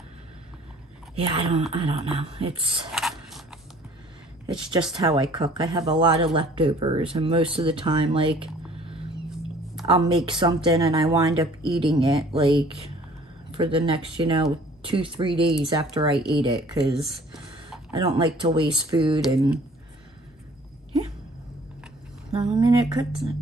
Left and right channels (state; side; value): normal; both; correlation 0.53